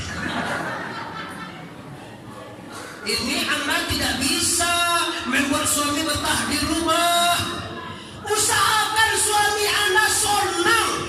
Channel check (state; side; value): identical; both; correlation 1.00